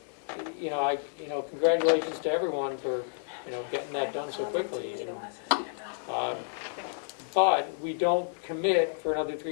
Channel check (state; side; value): silent; right; digital silence